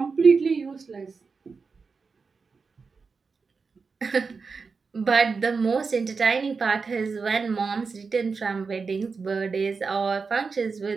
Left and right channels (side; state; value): left; quieter; 4.8 dB